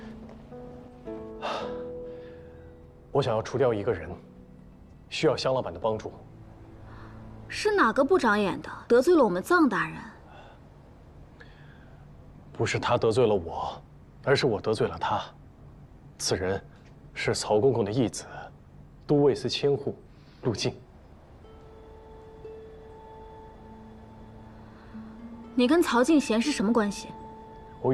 我想要除掉一个人，需要香老板的帮助。是哪个不长眼的得罪了我们臧大人？不是他得罪了我，而是我得罪了他。此人是曹公公的义子，都尉司千户陆敬。你跟曹敬贤是什么关系？我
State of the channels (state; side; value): identical; both; correlation 1.00